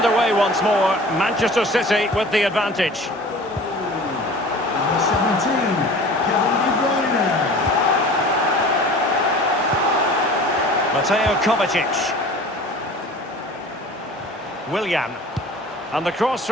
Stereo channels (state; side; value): normal; both; correlation 0.42